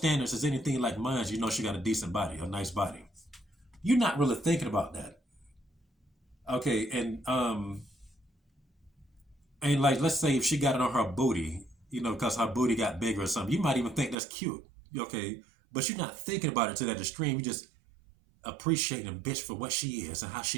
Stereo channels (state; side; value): drops out; left; at 14.2 s